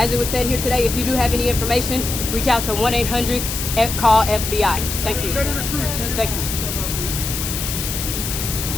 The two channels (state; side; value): noise; left; hiss, 4 dB below the sound